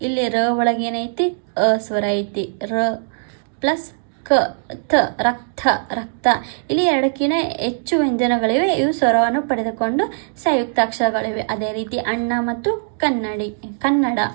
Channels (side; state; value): left; silent; digital silence